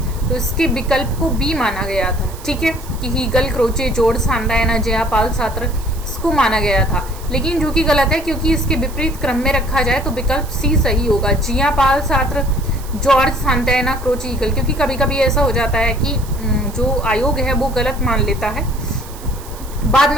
तो इसके विकल्प को बी माना गया था, ठीक है, कि Hegel, Croce, George सांतायना, Jayapal Sartre, इसको माना गया था। लेकिन जो कि गलत है, क्योंकि इसके विपरीत क्रम में रखा जाए तो विकल्प सी सही होगा। Jayapal Sartre, George सांतायना, Croce, Hegel. क्योंकि कभी कभी ऐसा हो जाता है कि जो आयोग है वो गलत मान लेता है, बाद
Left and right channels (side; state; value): right; noise; hiss, 18 dB below the sound